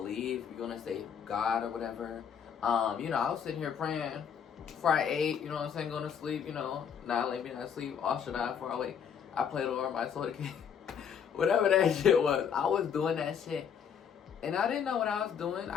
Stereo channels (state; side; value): quieter; right; 7.6 dB